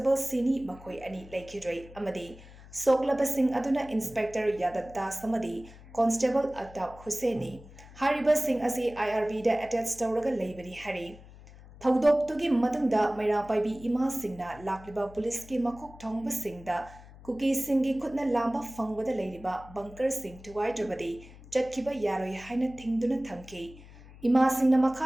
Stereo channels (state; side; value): noise; left; hum, 19 dB below the sound